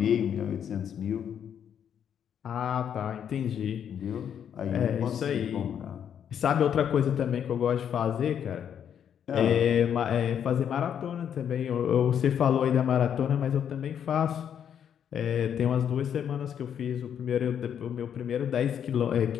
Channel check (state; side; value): quieter; right; 8.7 dB